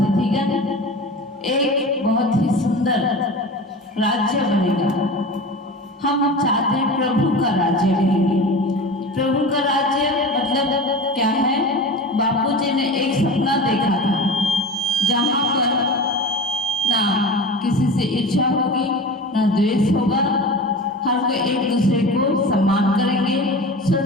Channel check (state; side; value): normal; both; correlation 0.32